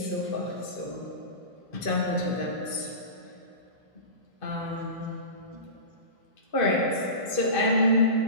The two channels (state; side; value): late; right; 2.5 ms